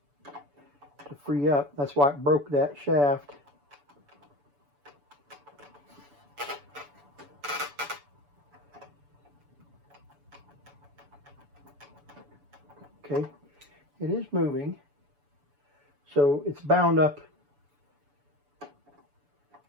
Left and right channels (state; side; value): late; left; 6.9 ms